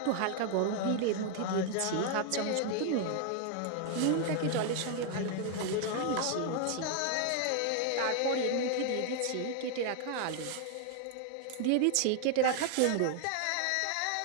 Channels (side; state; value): both; different; correlation 0.00